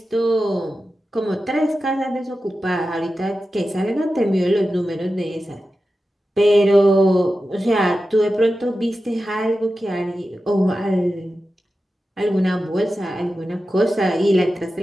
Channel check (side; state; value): both; normal; correlation 0.92